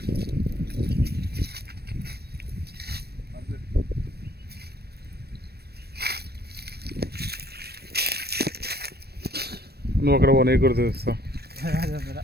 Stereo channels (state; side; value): late; left; 0.47 ms